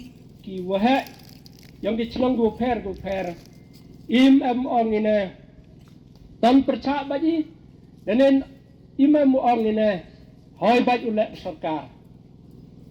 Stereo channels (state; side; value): identical; both; correlation 1.00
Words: ki wa he yang cái chnang go per im ong ini tan percaya baji dan im ong ini hoi baji oleh sarkar